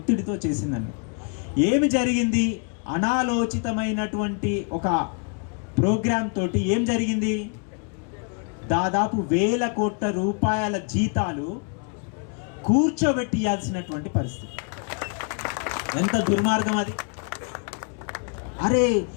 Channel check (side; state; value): right; quieter; 39.2 dB